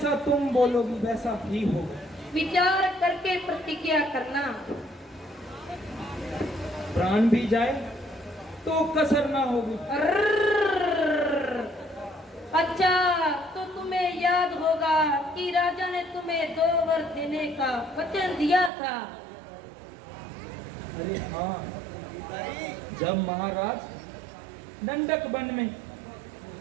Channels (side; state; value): left; drops out; at 18.7 s